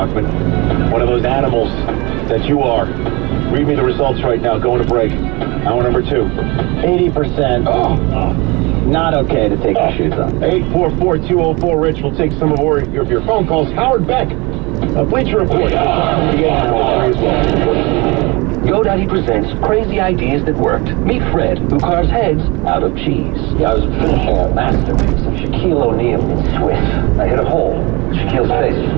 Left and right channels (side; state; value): left; quieter; 25.9 dB